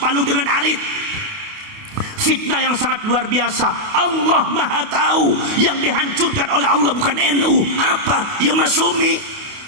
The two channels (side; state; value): left; late; 29 ms